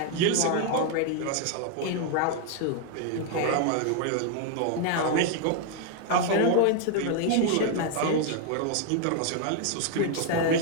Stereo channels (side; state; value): both; different; correlation 0.00